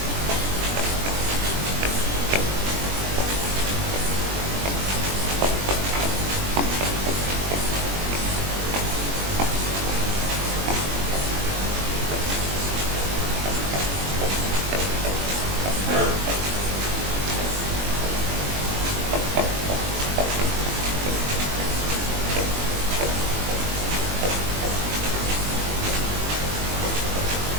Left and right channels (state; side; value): late; left; 21 ms